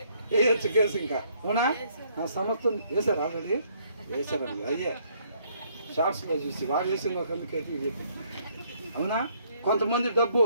వేయచ్చు కేసు. ఇంకా అవునా? నా సమస్తం వేసారు, ఆల్రెడీ వేసారండి. అయ్యే షార్ట్స్లో చూసి వాడు వేసిన ఒక అందుకైతే ఇది. అవునా? కొంతమంది డబ్బు,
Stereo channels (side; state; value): both; inverted; correlation -0.66